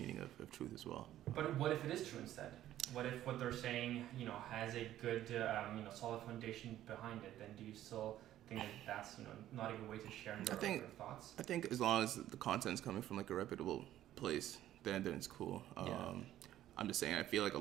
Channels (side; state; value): left; quieter; 12.9 dB